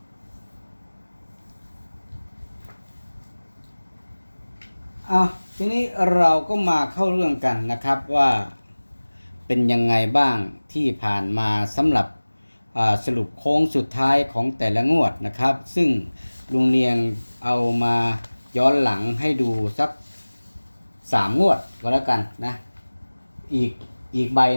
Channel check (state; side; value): inverted; both; correlation -1.00